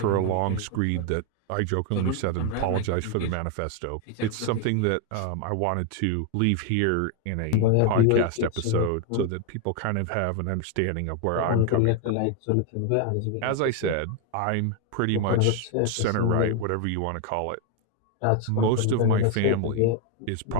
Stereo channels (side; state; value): both; different; correlation 0.01